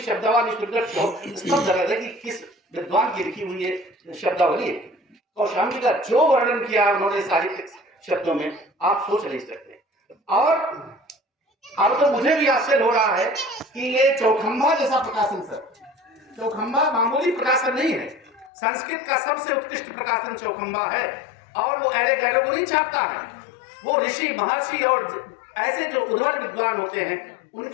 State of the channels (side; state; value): right; drops out; at 18.5 s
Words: कि किस विद्वान की लिखी हुई है शब्दावली है। कौशाम्बी का जो वर्णन किया उन्होंने साहित्यिक शब्दों में, आप सोच नहीं सकते। और अब तो मुझे भी आश्चर्य हो रहा है कि ये चौखंबा जैसा प्रकाशन, सर चौखंबा मामूली प्रकाशन नहीं है, संस्कृत का सबसे उत्कृष्ट प्रकाशन चौखंबा है, और वो एड़े गैड़े को नहीं छापता है, वो ऋषि महर्षि और ऐसे जो उद्भट विद्वान होते हैं